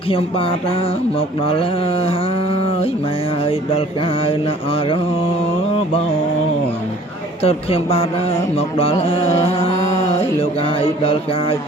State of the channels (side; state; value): both; normal; correlation 0.52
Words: ខ្ញុំបាទមកដល់ហើយម៉ែអើយដល់កាយណាអរបងតើខ្ញុំបាទមកដល់ហើយលោកអាយដល់កាយ